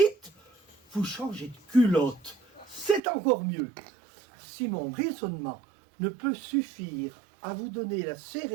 vous changez de culotte. C'est encore mieux. Si mon raisonnement ne peut suffire à vous donner la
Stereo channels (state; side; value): drops out; left; at 3.0 s